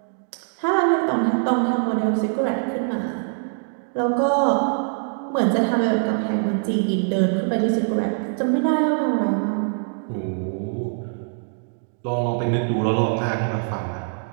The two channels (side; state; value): left; silent; digital silence